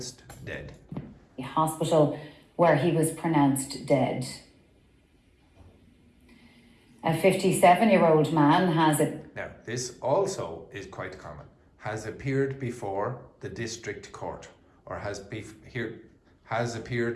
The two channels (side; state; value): both; identical; correlation 1.00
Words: dead. hospital where he was pronounced dead. A 57-year-old man has a Now, this also is quite common. Has appeared before the district court, or has